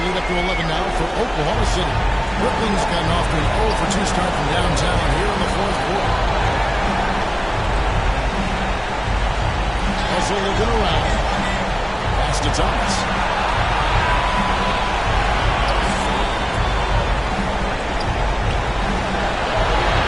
lead up to 11 now for Oklahoma City. Brooklyn's gotten off to an 0-for-2 start from downtown here in the fourth quarter. Also looking around. Pass to Thomas.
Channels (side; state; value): both; identical; correlation 1.00